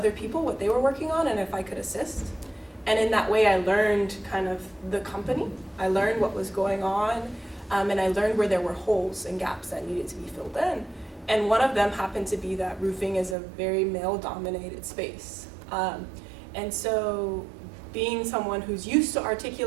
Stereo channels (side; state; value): left; drops out; at 13.4 s